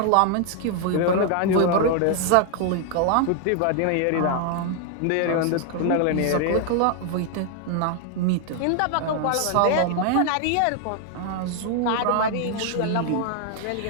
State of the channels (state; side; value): different; both; correlation 0.00